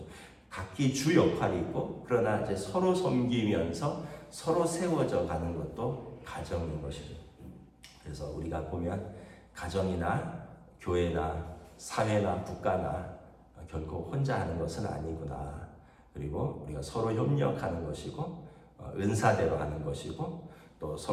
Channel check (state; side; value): identical; both; correlation 1.00